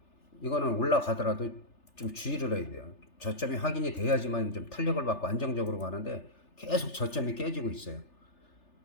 이거는 올라가더라도 좀 주의를 해야 돼요. 저점이 확인이 돼야지만 좀 탄력을 받고 안정적으로 가는데 계속 저점이 깨지고 있어요.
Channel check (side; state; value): right; late; 3.4 ms